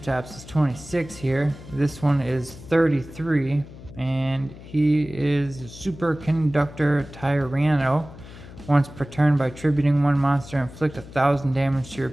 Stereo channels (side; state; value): left; noise; hum, 17 dB below the sound